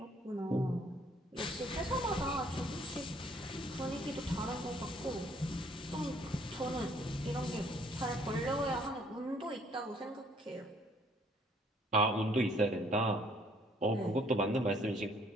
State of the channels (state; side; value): normal; both; correlation 0.63